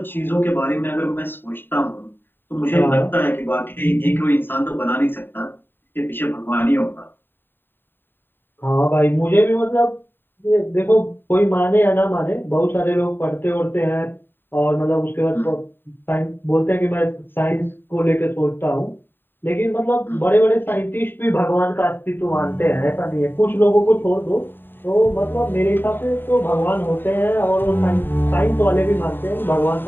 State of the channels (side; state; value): right; late; 0.096 ms